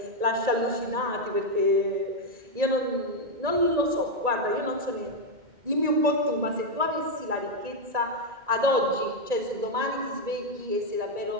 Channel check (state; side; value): late; left; 1.9 ms